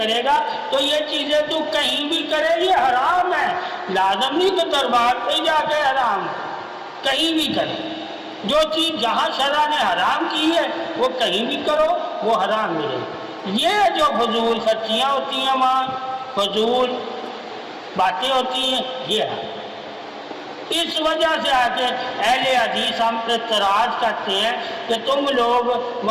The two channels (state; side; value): identical; both; correlation 1.00